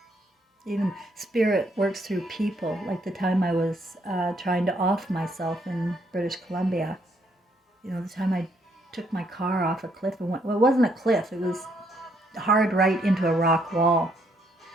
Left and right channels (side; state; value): both; normal; correlation 0.71